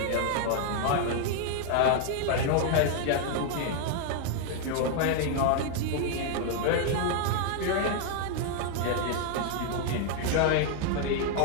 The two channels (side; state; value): both; different; correlation 0.00